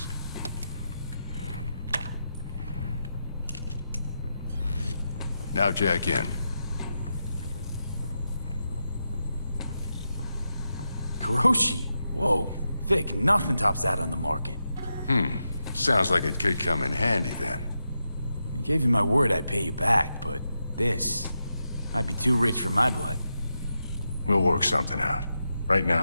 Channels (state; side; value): inverted; both; correlation -0.87